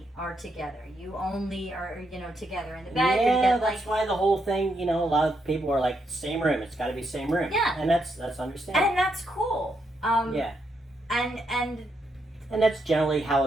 are together. You only are, together in the bed. Yeah, that's why the whole thing, a lot of people are like, same room. It's got to be same room. Yeah. And that's understandable. And that's cool. Yeah. And that's generally how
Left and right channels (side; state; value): both; normal; correlation 0.79